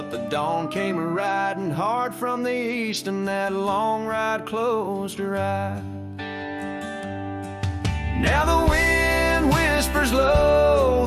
the dawn came riding hard from the east, and that long ride closed her eyes. Now the wind whispers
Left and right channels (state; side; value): identical; both; correlation 1.00